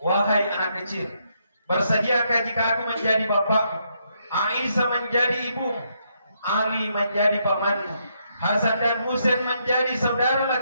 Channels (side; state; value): both; inverted; correlation -0.76